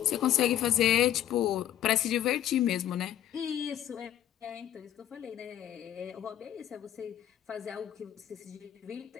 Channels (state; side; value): quieter; right; 11.3 dB